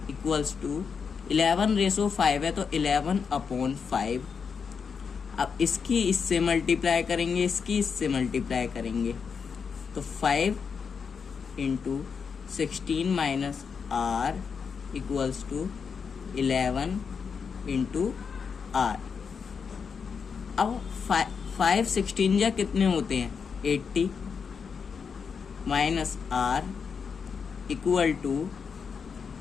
इक्वल्स टू 11/5 है तो 11/5। अब इसकी इससे मल्टीप्लाई करेंगे, इसकी इससे मल्टीप्लाई करेंगे, तो 5 into 16 minus r equals to 11 into r। अब 5 16 जा कितने होते हैं, 80 माइनस r इक्वल टू,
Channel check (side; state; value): right; quieter; 6.0 dB